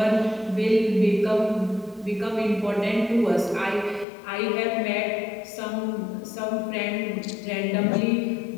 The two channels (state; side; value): drops out; right; at 4.0 s